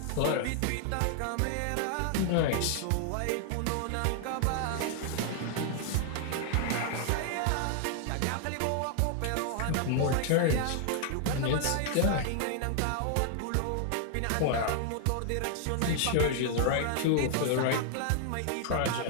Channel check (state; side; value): different; both; correlation 0.00